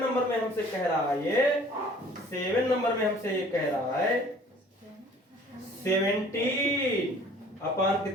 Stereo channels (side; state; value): both; normal; correlation 0.51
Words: नंबर में हमसे कह रहा है ये, 7 नंबर में हमसे ये कह रहा है 17 अपॉन